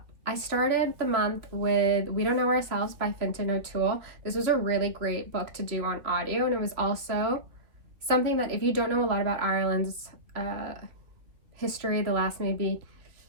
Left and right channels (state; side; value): late; left; 2.7 ms